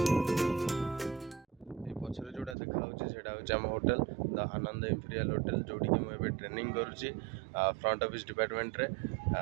पछरे जोटा देखा आम hotel the Anand imperial hotel जोटी कि मुझे ट्रेनिंग करुच्ची फ्रंट ऑफिस डिपार्टमेंट रे।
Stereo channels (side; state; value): left; drops out; at 2.6 s